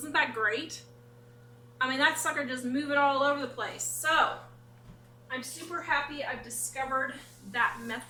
that great? I mean, that sucker just moving all over the place. So I'm super happy I've discovered that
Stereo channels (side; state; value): both; identical; correlation 1.00